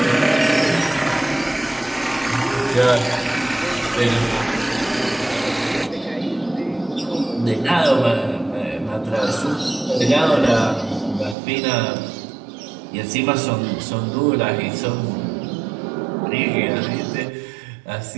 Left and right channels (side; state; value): left; drops out; at 11.4 s